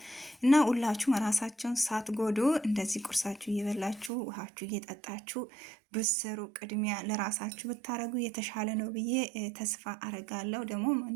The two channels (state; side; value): drops out; left; at 4.1 s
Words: እና ሁላችሁም ራሳችሁን ሳትጎዱ እንደዚህ ቁርሳችሁ እየበላችሁ ውሃችሁ እየጠጣችሁ ብትሰሩ ቅድሚያ ለራሳችሁ ብታረጉ የተሻለ ነው ብዬ ተስፋ አረጋለሁ። ደግሞ